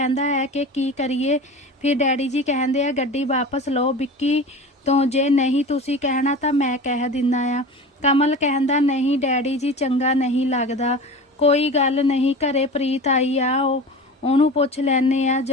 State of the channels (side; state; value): both; normal; correlation 0.33